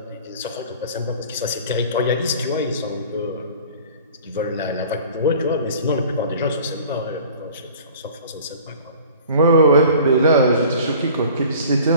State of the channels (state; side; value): inverted; both; correlation -0.46